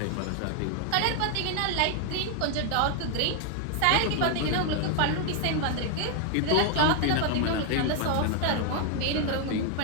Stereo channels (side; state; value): both; different; correlation 0.00